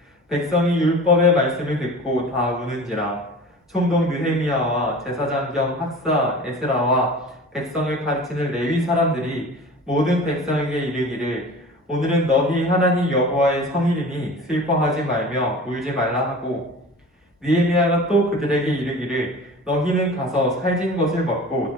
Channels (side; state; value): both; normal; correlation 0.39